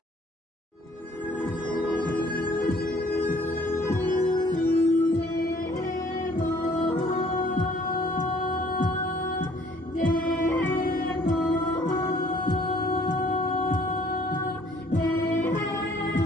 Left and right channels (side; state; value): both; normal; correlation 0.58